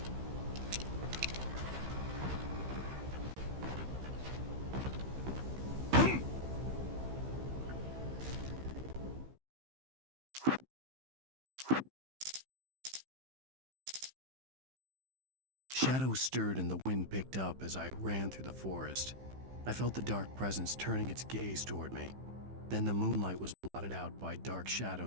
Shadows stirred and the wind picked up as I ran through the forest. I felt the dark presence turning its gaze toward me. Then the moonlight was blotted out by dark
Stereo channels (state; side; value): late; left; 15 ms